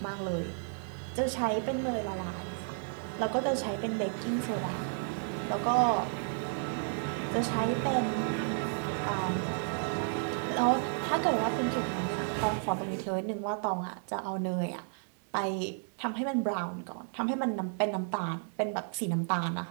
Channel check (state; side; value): silent; left; 56 dB below the other